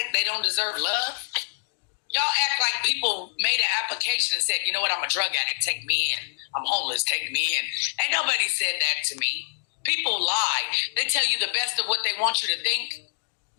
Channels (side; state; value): right; silent; digital silence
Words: they don't deserve love? Y'all act like people made an application and said, you know what, I'm a drug addict, take me in. I'm homeless, take me in. Ain't nobody said that to me. People lie. They tell you the best of what they want you to think.